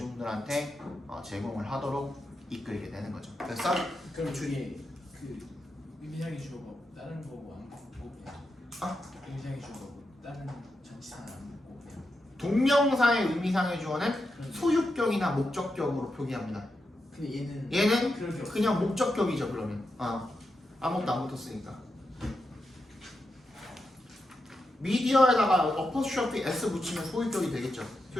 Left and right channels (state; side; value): normal; both; correlation 0.87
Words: 제공을 하도록 이끌게 되는 거죠. 그래서 그럼 저기 그 의미상의 주어가 다른 거고 안 먹고 그냥 의미상의 주어가 다른 전치사는 안 먹고 그냥 동명사의 의미상의 주어는 소유격이나 목적격으로 표기합니다. 근데 얘는 그런 게 없어. 그냥 목적격이죠. 그러면 아무것도 안 붙었으니까. 미디어에다가 어퍼스트로피 s 붙이면 소유격이 되겠죠.